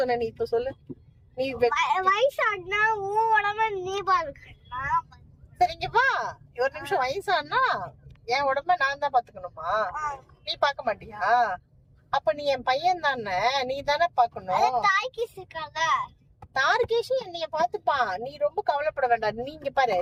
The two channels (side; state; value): both; identical; correlation 1.00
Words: நீ இப்ப சொல்லு. நீ வயசானா உன் உடம்ப நீ பாத்துக்கணும். சரி இங்க வா, ஒரு நிமிஷம். வயசானா என் உடம்ப நான் தான் பாத்துக்கணுமா? நீ பாக்க மாட்டியா? அப்ப நீ என் பையன் தானே, நீ தானே பாக்கணும். தார்கேஷ் என்னைய பாத்துப்பான், நீ ரொம்ப கவலைப்பட வேண்டாம். நீ இங்க பாரு,